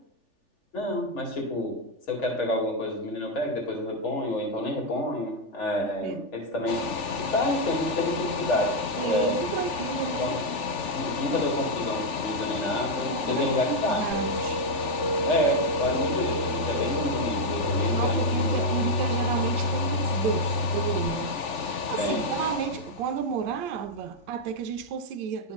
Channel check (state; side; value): late; right; 3.4 ms